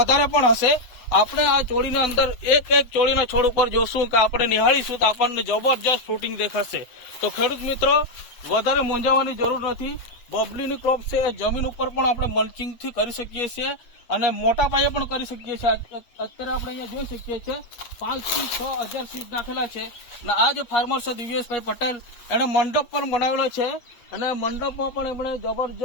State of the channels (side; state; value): right; late; 8.5 ms